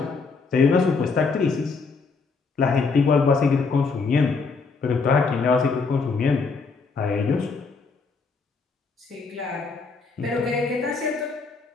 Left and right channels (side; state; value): right; quieter; 4.6 dB